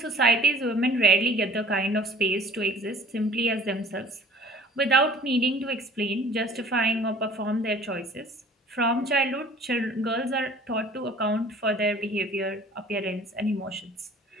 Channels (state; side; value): normal; both; correlation 0.50